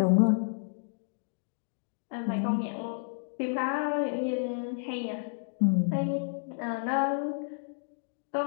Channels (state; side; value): silent; right; digital silence